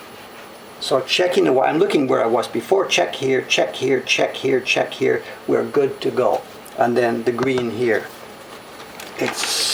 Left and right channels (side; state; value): both; identical; correlation 1.00